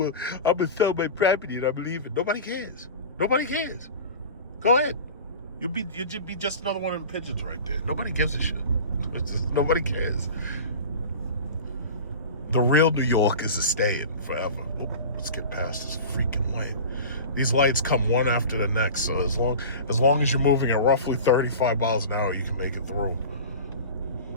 I'm gonna sell my property and I believe it. Nobody cares. Nobody cares. Go ahead. You'd be just another one of the pigeons right there. Nobody gives a shit. Nobody cares. The real New York is a staying forever. Oh, let's get past this freaking light. These lights come one after the next, so as long as you're moving at roughly 35 miles an hour, you can make it through.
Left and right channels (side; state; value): both; inverted; correlation -0.34